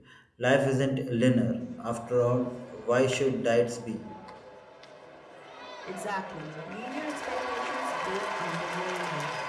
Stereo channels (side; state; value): both; identical; correlation 1.00